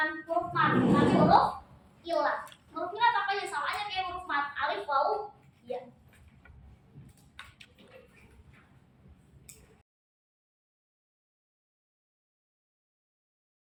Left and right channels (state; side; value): identical; both; correlation 1.00